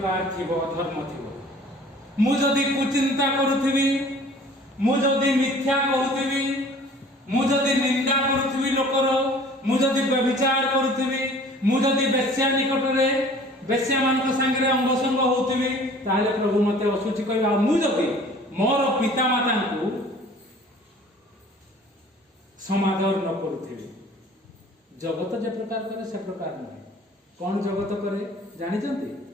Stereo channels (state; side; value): normal; both; correlation 0.49